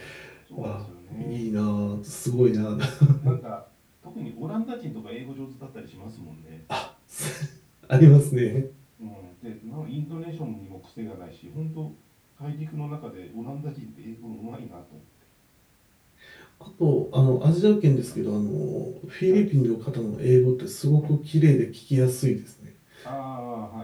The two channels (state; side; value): identical; both; correlation 1.00